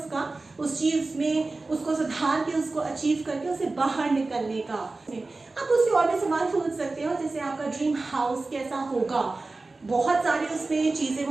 उस चीज़ में उसको सुधार के, उसको अचीव करके उसे बाहर निकलने का। आप उससे और भी सवाल पूछ सकते हो, जैसे आपका ड्रीम हाउस कैसा होगा, बहुत सारे उसमें चीज़ें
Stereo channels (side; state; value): left; quieter; 3.4 dB